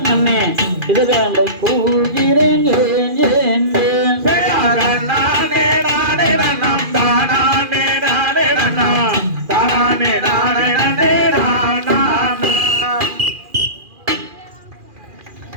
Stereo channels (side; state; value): left; late; 2.4 ms